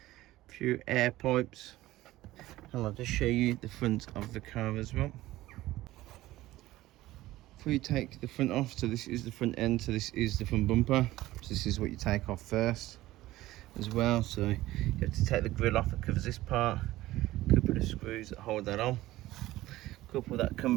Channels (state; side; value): quieter; left; 16.5 dB